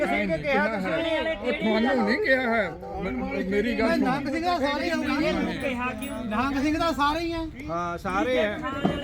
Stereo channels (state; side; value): identical; both; correlation 1.00